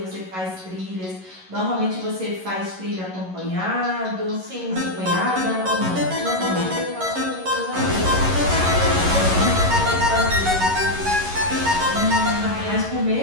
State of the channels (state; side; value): late; left; 11 ms